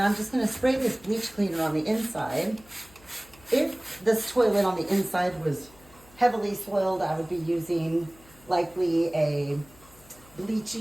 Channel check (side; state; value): left; noise; hum, 25 dB below the sound